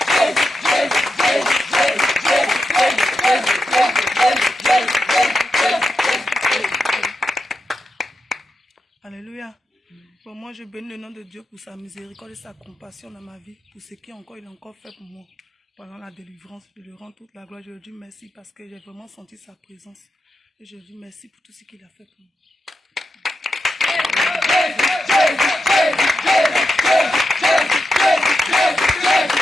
Alléluia. Bon, moi, je bénis le nom de Dieu pour sa miséricorde et sa compassion dans ma vie, pour ce qu'il a encore fait pour moi pendant la délivrance. Je lui rends toute la gloire. Je lui dis merci parce que j'ai vraiment senti sa présence. Et je lui dis merci pour tout ce qu'il a fait pour moi.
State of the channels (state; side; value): normal; both; correlation 0.88